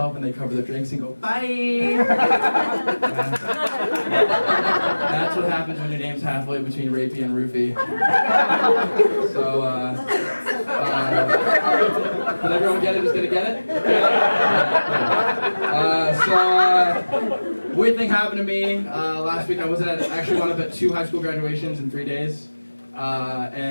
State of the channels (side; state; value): both; inverted; correlation -1.00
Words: and they cover their drinks and go, "Bye." That's what happens when your name's halfway between Rapey and Roofie. So, did everyone get it? Who's gonna get it? Weird thing happened to me last week. I actually wound up at 2 high school graduations in 3 days,